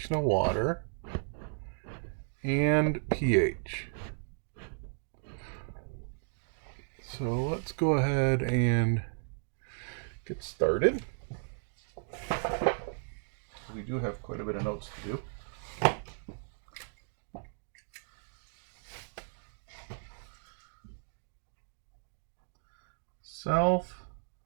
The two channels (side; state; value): left; silent; digital silence